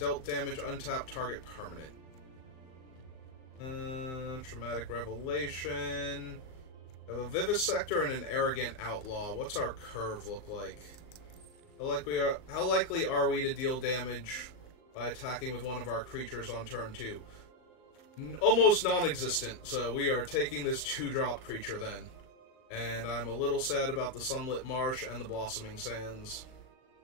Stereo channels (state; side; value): late; right; 38 ms